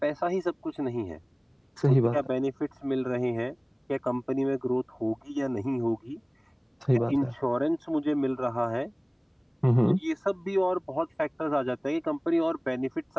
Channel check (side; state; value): both; identical; correlation 1.00